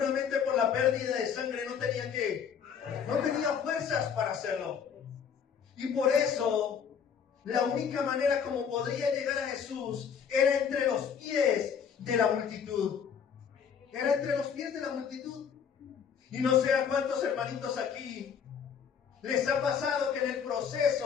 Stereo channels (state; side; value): quieter; right; 7.2 dB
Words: por la pérdida de sangre no tenía fuerzas para hacerlo. Y por eso la única manera como podría llegar a Jesús era entre los pies de la multitud. Era entre los pies de la multitud. Y no sé a cuántos hermanitos aquí les ha pasado que en el